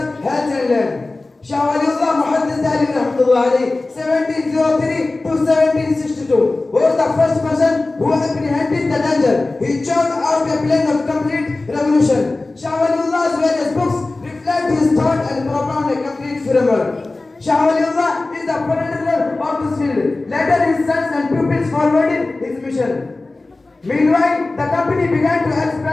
health and land. Shah Waliullah Muhammad 1703 to 1762 was the first person who apprehended the danger. He chose out a plan of complete revolution. Shah Waliullah's various books reflect his thought and propound a complete framework. Shah Waliullah is the progenitor of this field. Later his sons and pupils forwarded his mission. Meanwhile, the company began to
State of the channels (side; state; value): right; quieter; 3.2 dB